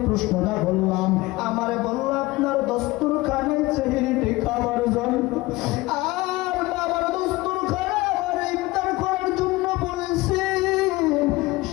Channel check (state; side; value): quieter; right; 20.5 dB